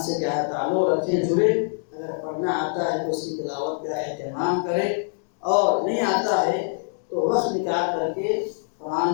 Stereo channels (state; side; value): silent; right; digital silence